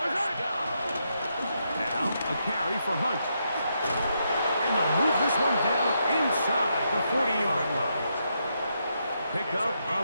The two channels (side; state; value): both; inverted; correlation -0.80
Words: First down. Now a carry for Hunt. And they'll move this one down inside the 40-yard line. Pickup